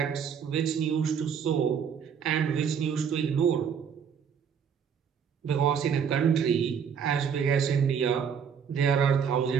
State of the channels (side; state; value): left; quieter; 7.3 dB